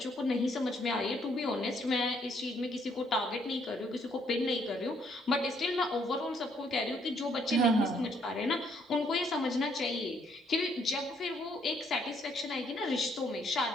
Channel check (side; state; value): both; normal; correlation 0.69